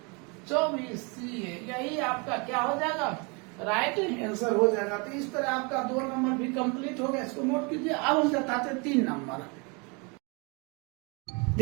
24 ca, यही आपका क्या हो जाएगा राइट आंसर हो जाएगा। तो इस तरह आपका 2 नंबर भी कंप्लीट हो गया, इसको नोट कीजिए। अब हम बताते हैं 3 नंबर।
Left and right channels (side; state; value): left; quieter; 31.3 dB